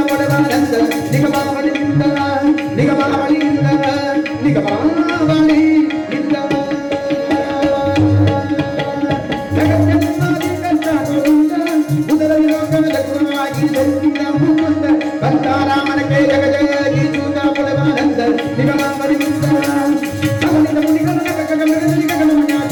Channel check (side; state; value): both; identical; correlation 1.00